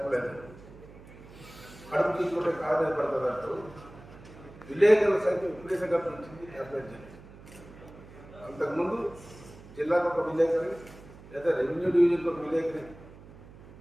కడుపు తీసుకుంటే కాదు పడుతుంది అంటూ విలేకరుల సంఖ్య విపరీతంగా పెంచింది ట్యాబ్లెట్ జర్నలిజం. అంతకుముందు జిల్లాకు ఒక విలేకరి లేదా రెవెన్యూ డివిజన్కి ఒక విలేకరి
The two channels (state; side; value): noise; right; hum, 19 dB below the sound